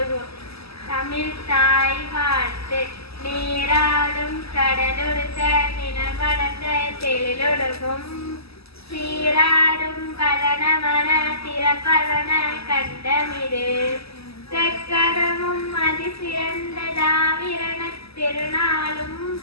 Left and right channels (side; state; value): right; late; 0.78 ms